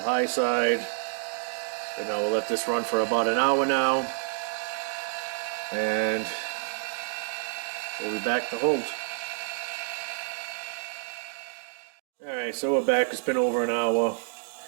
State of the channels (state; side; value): silent; left; digital silence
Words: high side. And now we'll let this run for about an hour now, and we'll be back to hold. Alright, so we're back. It's been over an hour.